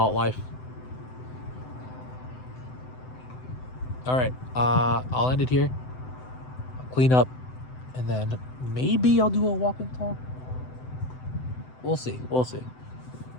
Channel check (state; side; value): late; right; 7.9 ms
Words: life. All right, I'll end it here. I'll clean up, and then maybe I'll do a walk and talk. We'll see.